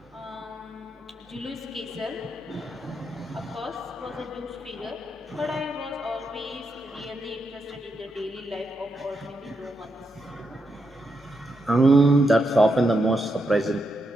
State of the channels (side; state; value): both; normal; correlation 0.83